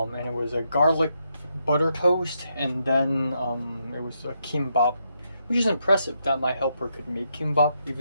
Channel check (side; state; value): both; inverted; correlation -0.80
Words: it was a garlic butter toast, and then it was a kimbap, which is impressive that my helper could make kimbap,